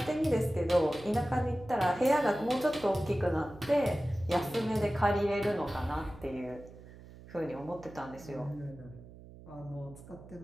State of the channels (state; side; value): noise; right; hum, 18 dB below the sound